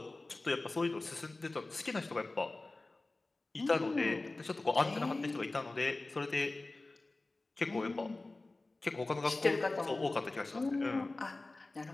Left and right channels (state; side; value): quieter; right; 3.1 dB